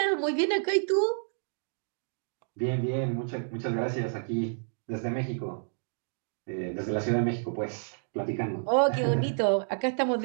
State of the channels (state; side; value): silent; left; digital silence